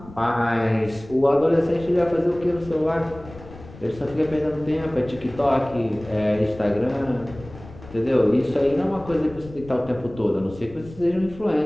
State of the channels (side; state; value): left; noise; rumble, 18 dB below the sound